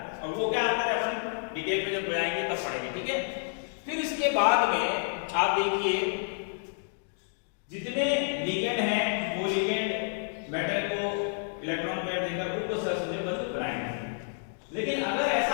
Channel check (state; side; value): silent; right; digital silence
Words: और वो क्या अंतर है अपन डिटेल में जब जाएंगे तब पढ़ेंगे, ठीक है। फिर इसके बाद में आप देखिए जितने लिगेंड हैं वो लिगेंड मेटल को इलेक्ट्रॉन पेयर देकर उसको सहसंयोजक बनाएंगे। लेकिन अगर